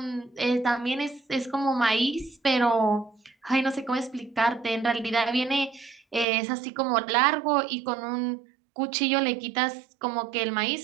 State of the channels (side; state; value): left; drops out; at 6.2 s